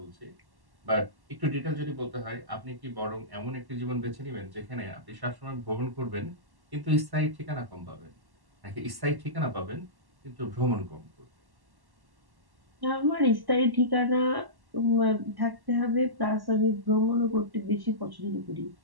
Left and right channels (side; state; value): left; late; 1.1 ms